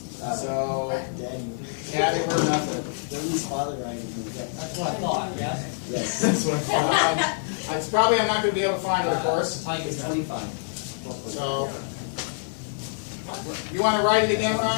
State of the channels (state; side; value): silent; right; 61 dB below the other